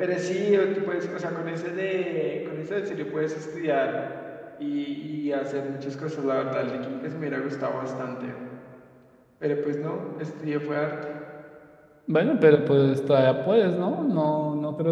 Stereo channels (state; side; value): identical; both; correlation 1.00